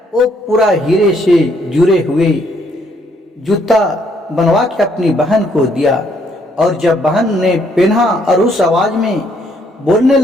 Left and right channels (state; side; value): normal; both; correlation 0.69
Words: वो पूरा हीरे से जुड़े हुए जूता बनवा के अपनी बहन को दिया। और जब बहन ने पहना और उस आवाज में बोलने